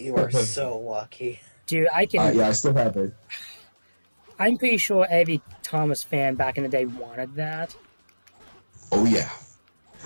are so lucky. Dude, I can. Yeah, I still have it. I'm pretty sure every Thomas fan back in the day wanted that. Oh yeah.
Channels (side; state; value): both; inverted; correlation -1.00